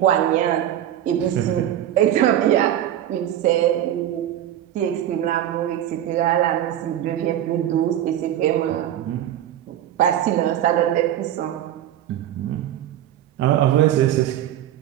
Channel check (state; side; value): quieter; left; 11.7 dB